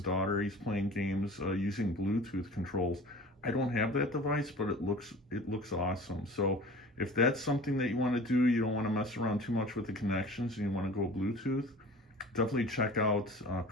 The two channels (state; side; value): normal; both; correlation 0.41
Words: daughter. He's playing games using Bluetooth controls. I don't have that device, but it looks awesome. So if that's something that you want to do, you don't want to mess around too much with the connections, and you want to go Bluetooth, definitely check out